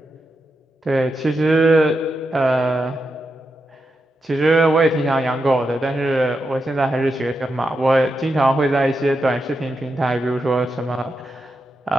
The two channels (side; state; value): both; normal; correlation 0.87